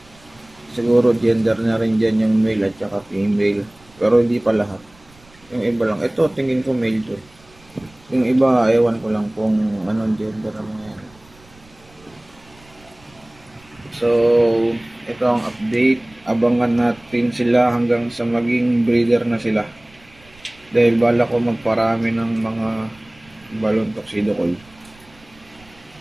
siguro gender na rin dyan yung male at saka female. Pero hindi pa lahat. Yung iba lang. Ito, tingin ko male to. Yung iba, ewan ko lang kung anong gender ang mga yan. So, ito ang update. Abangan natin sila hanggang sa maging breeder na sila. Dahil bala ko magparami ng mga balloon tuxedo koi.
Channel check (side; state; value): right; noise; rumble, 27 dB below the sound